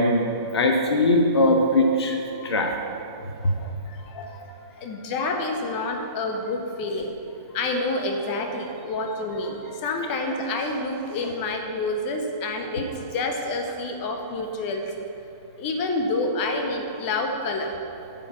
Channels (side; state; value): both; inverted; correlation -0.35